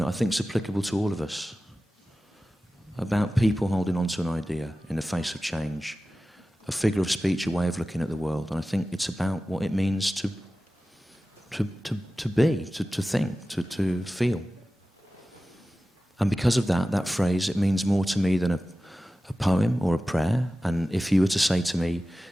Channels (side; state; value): both; normal; correlation 0.95